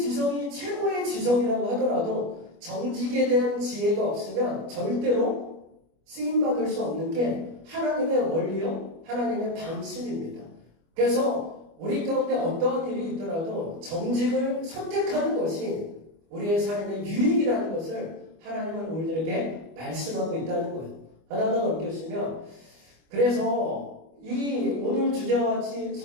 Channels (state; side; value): late; left; 25 ms